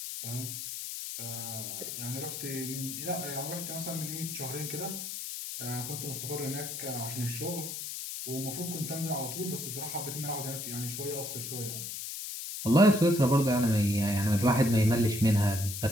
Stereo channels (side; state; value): left; noise; hiss, 6 dB below the sound